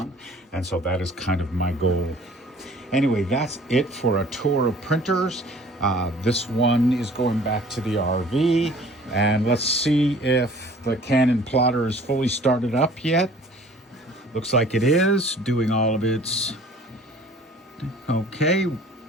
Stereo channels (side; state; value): both; normal; correlation 0.51